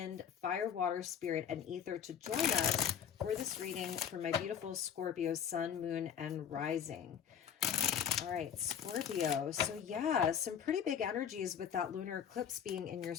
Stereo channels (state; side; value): quieter; right; 8.3 dB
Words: fire, water, spirit, and ether to join us for this reading for my beautiful Scorpio Sun, Moon, and Rising. All right, Scorpio. So yeah, some pretty big energies with that lunar eclipse being in your